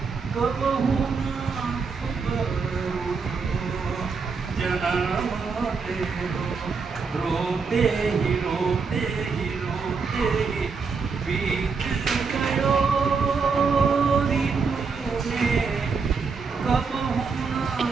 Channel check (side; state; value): left; quieter; 5.1 dB